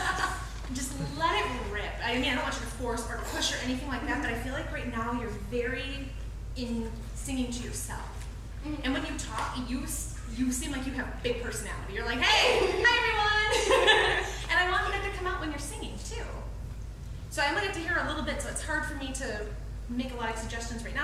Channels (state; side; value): identical; both; correlation 1.00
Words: Just let it rip. I mean, I don't want you to force or push or anything like that, but I feel like right now you're very in singing to yourself. And when you talk, you seem like you have a big personality. You're like, hey, hi everyone! And I want that to come out when you're singing too. So I'm gonna get to hear a little bit, so it's hard for me to make a lot of suggestions right